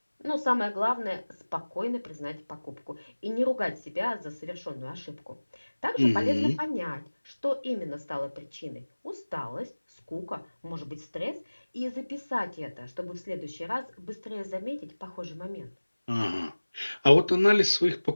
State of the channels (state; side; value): inverted; both; correlation -1.00